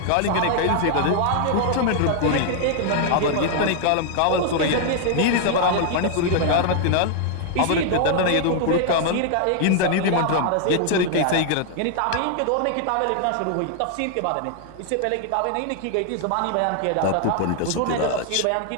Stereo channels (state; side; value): different; both; correlation 0.00